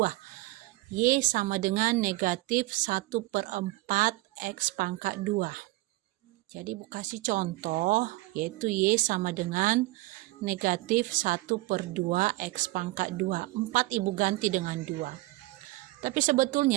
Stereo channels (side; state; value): left; quieter; 19.8 dB